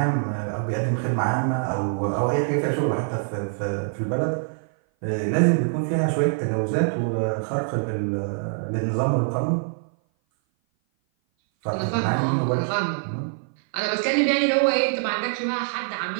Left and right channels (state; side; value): silent; left; 57 dB below the other